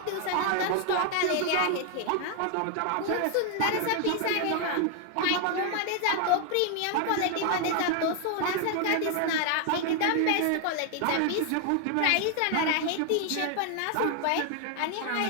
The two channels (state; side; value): different; both; correlation 0.00